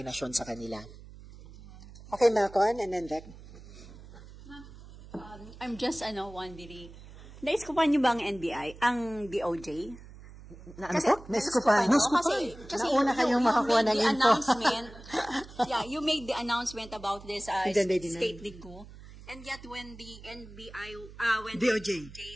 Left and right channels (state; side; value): noise; right; hum, 18 dB below the sound